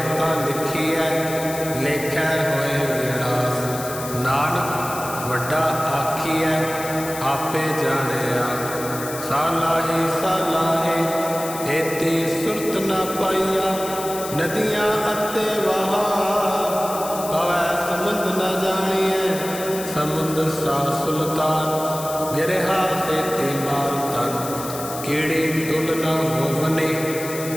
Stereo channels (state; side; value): noise; left; hiss, 10 dB below the sound